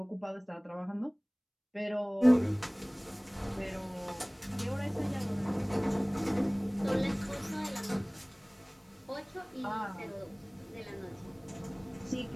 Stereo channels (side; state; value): both; identical; correlation 1.00